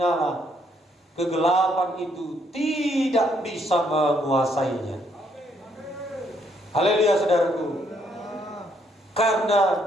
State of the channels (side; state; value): both; normal; correlation 0.71